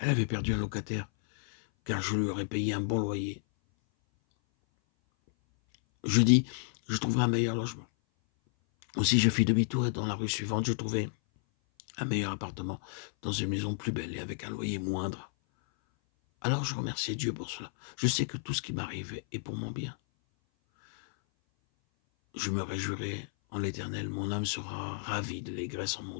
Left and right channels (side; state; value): right; silent; 57 dB below the other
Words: avait perdu un locataire, car je lui aurais payé un bon loyer. Je dis, je trouverai un meilleur logement. Aussi, je fis demi-tour et dans la rue suivante, je trouvai un meilleur appartement, dans une maison plus belle et avec un loyer moindre. Alors je remerciai Dieu pour cela. Je sais que tout ce qui m'arrive est pour mon bien. Je me réjouirai en l'Éternel, mon âme sera ravie de l'allégresse en mon